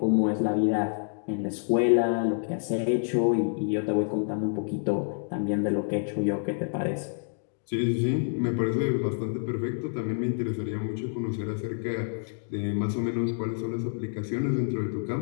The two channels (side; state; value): right; silent; digital silence